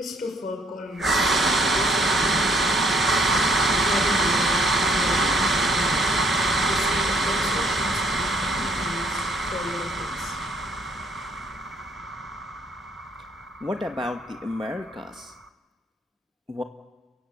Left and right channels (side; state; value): both; normal; correlation 0.65